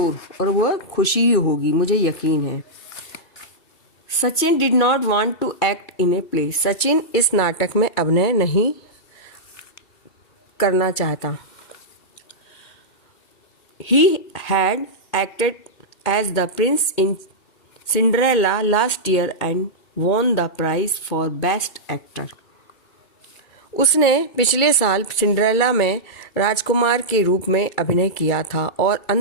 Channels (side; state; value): right; late; 2.7 ms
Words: और वह खुशी ही होगी, मुझे यकीन है। Sachin did not want to act in a play. Sachin इस नाटक में अभिनय नहीं करना चाहता। He had acted as the prince in Cinderella last year and won the prize for best actor. उसने पिछले साल सिंड्रेला में राजकुमार के रूप में अभिनय किया था और